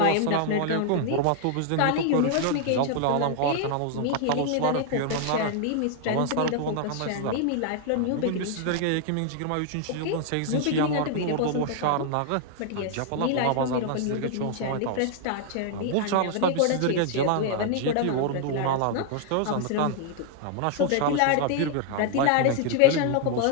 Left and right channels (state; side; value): different; both; correlation 0.00